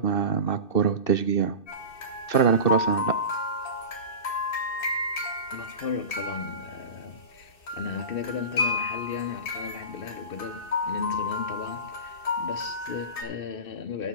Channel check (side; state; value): right; late; 2.6 ms